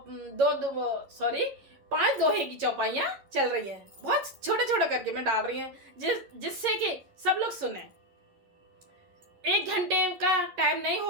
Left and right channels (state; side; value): late; left; 11 ms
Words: पांच दोहे की चौपाइयाँ चल रही हैं। बहुत छोटे छोटे करके मैं डाल रही हूँ जिससे कि सब लोग सुने। 1 घंटे का टाइम नहीं